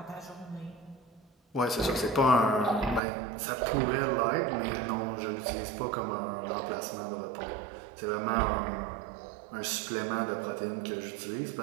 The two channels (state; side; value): drops out; left; at 3.0 s